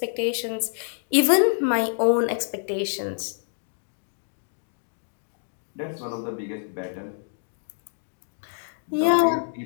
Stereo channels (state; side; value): silent; right; digital silence